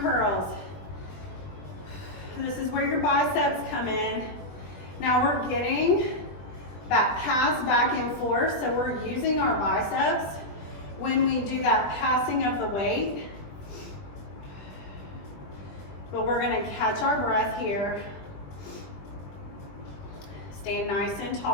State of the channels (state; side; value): late; right; 20 ms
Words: This is where your biceps come in. Now we're getting that pass back and forth, so we're using our biceps when we do that passing of the weight. But we're going to catch our breath here. Stand nice and